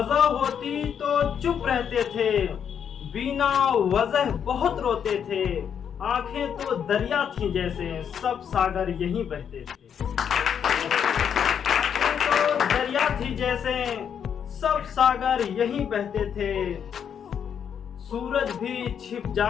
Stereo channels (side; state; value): right; quieter; 8.0 dB